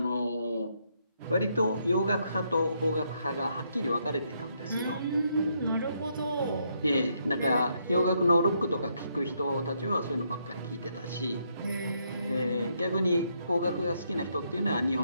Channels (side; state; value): both; inverted; correlation -0.75